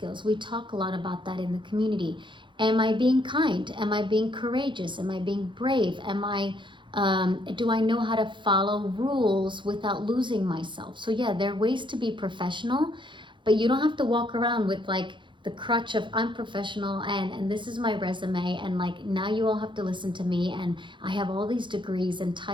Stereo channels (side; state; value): left; late; 0.23 ms